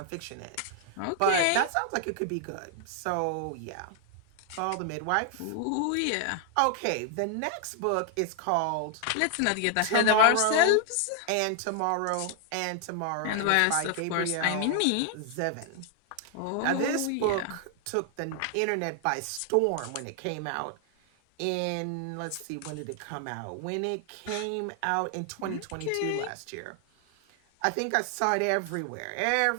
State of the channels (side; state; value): both; different; correlation 0.00